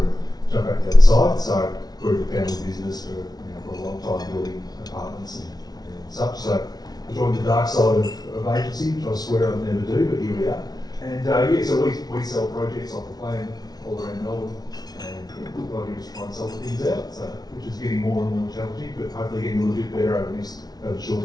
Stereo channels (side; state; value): right; late; 0.19 ms